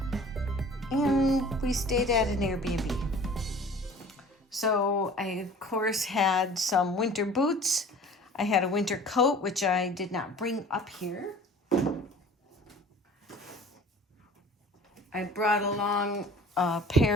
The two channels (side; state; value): both; normal; correlation 0.45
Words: And we stayed at an Airbnb. So I, of course, had some winter boots. I had a winter coat, which I did not bring up here. I brought along a